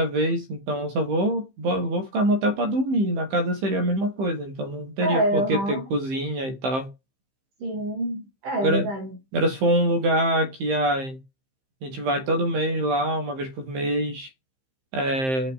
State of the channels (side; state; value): left; late; 15 ms